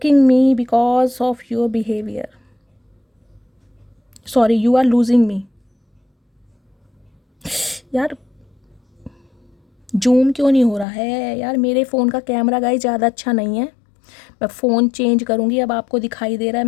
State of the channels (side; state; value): right; drops out; at 10.9 s